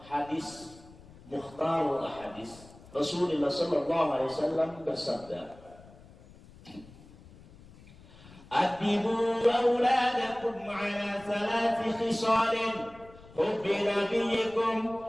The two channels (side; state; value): left; noise; rumble, 22 dB below the sound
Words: hadis Mukhtarul Hadis Rasulullah sallallahu alaihi wasallam bersabda, "Adibu auladakum ala 3 khisalin, hubbi nabiyyikum